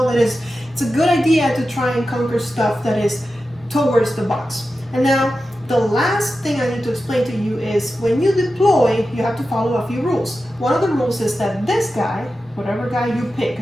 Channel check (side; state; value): both; normal; correlation 0.92